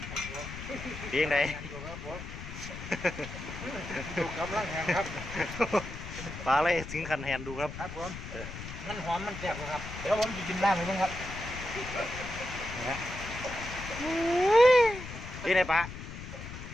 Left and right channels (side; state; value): left; noise; rumble, 10 dB below the sound